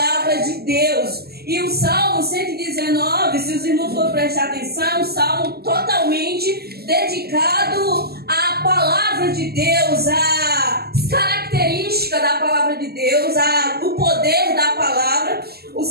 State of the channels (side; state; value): left; late; 0.46 ms